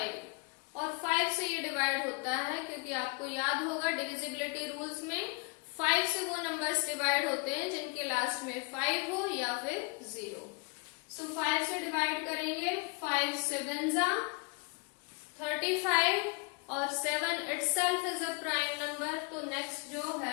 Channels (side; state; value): right; quieter; 30.7 dB